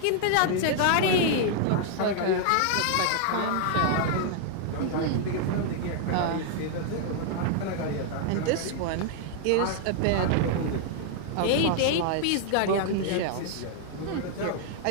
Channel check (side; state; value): both; different; correlation 0.00